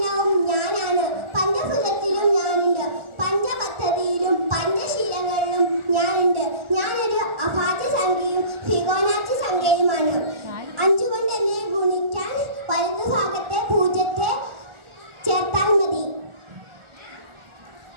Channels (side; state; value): left; late; 1.4 ms